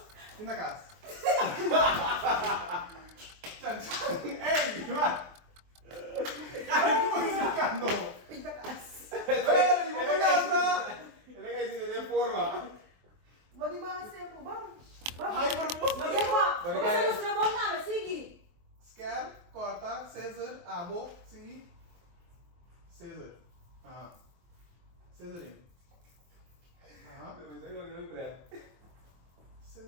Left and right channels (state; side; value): late; left; 23 ms